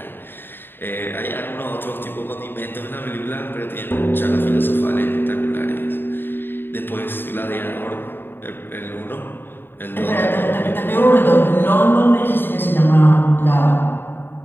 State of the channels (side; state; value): right; late; 0.099 ms